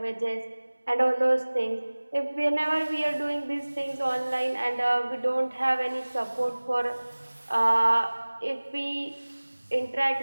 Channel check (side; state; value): both; inverted; correlation -1.00